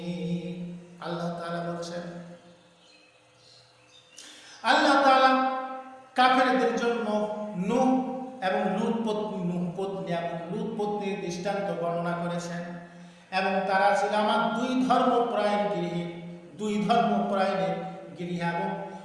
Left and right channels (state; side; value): identical; both; correlation 1.00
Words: আল্লাহ তাআলা বলছেন, আল্লাহ তাআলা কাফেরদের জন্য নূহ এবং লূত পত্নীর দৃষ্টান্ত বর্ণনা করেছেন। এবং তারা ছিল আমার দুই ধর্মপরায়ণের গৃহে, এবং